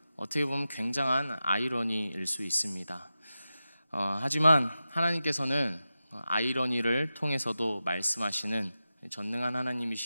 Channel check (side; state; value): both; inverted; correlation -0.92